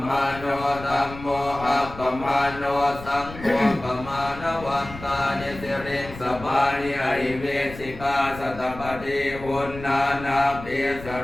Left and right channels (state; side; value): noise; left; rumble, 14 dB below the sound